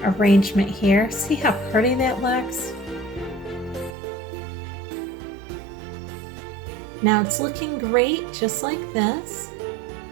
arrangement here. See how pretty that looks? Now it's looking great just like this,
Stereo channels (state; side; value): drops out; left; at 4.0 s